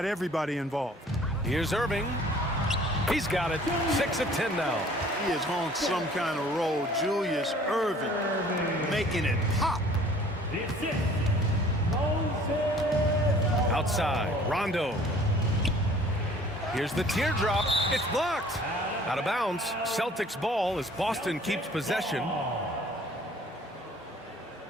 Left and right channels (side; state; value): both; normal; correlation 0.52